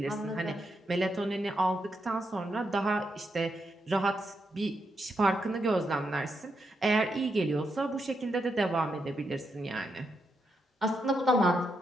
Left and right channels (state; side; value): normal; both; correlation 0.82